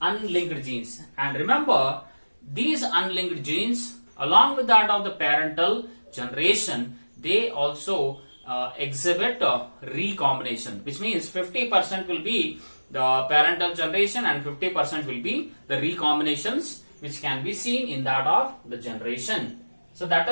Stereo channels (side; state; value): both; inverted; correlation -1.00